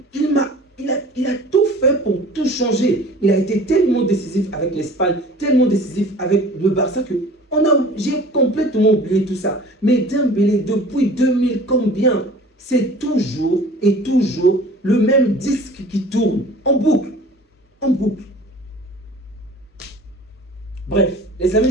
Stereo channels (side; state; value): both; normal; correlation 0.45